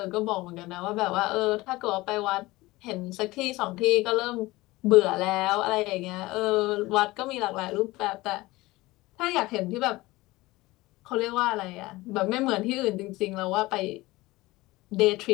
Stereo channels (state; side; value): quieter; right; 19.9 dB